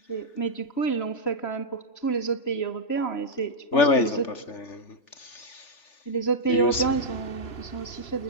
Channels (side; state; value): right; late; 3.4 ms